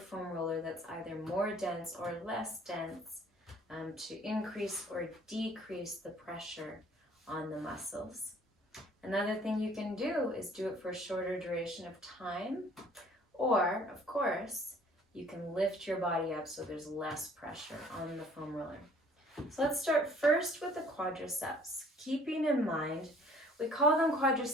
foam roller that's either more dense or less dense to increase or decrease the pressure on the muscles. Another thing you can do is do it for a shorter duration of time, or, of course, you can lift your body up so there's less pressure on the foam roller. So let's start first with the quadriceps. Keeping in mind, we call them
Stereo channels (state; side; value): normal; both; correlation 0.55